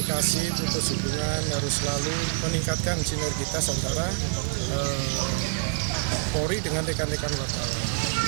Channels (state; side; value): silent; left; 61 dB below the other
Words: putus hubungan, harus selalu meningkatkan sinergitas antara Polri dengan rekan-rekan wartawan.